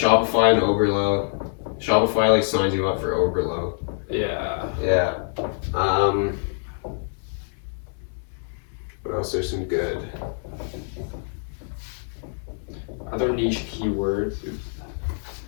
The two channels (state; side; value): silent; right; digital silence